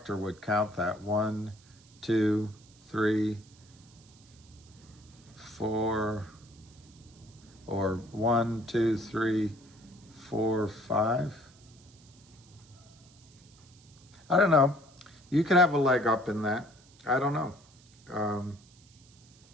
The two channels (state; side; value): noise; right; hiss, 27 dB below the sound